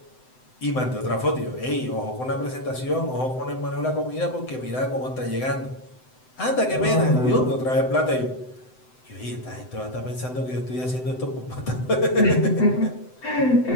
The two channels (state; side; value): late; right; 7.8 ms